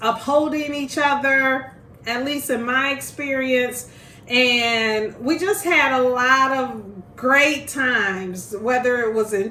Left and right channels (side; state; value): both; identical; correlation 1.00